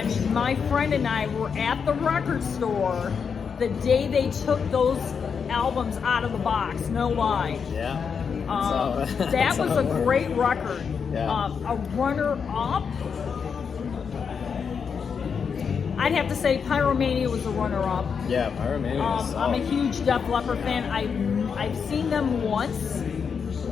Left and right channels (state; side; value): quieter; right; 6.3 dB